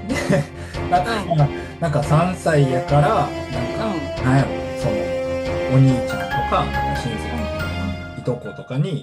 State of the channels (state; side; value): identical; both; correlation 1.00